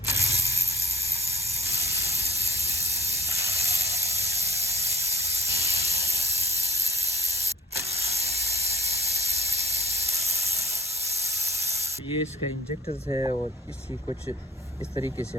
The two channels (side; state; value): both; normal; correlation 0.45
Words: ये इसका इंजेक्टर्स है और इसकी कुछ इस तरीके